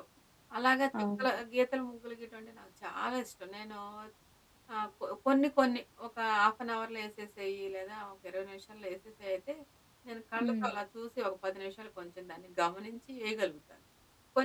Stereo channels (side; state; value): both; identical; correlation 1.00